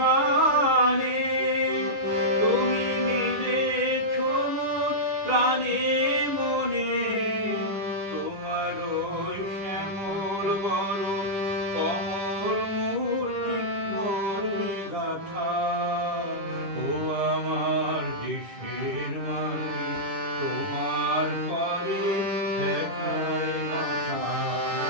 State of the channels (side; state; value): left; late; 10 ms